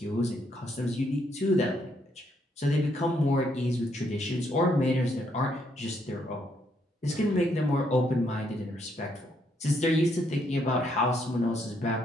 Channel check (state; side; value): normal; both; correlation 0.73